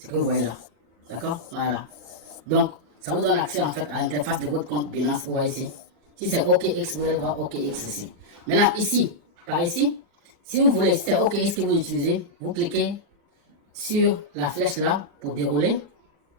que vous voyez là. D'accord? Voilà. Donc, ça vous donne accès en fait à l'interface de votre compte Binance. Vous voyez ici. Si c'est OKX, vous allez voir OKX ici. Maintenant, ici, par ici, si vous voulez, si c'est OKX que vous utilisez, vous cliquez sur la flèche là pour dérouler.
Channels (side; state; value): left; late; 39 ms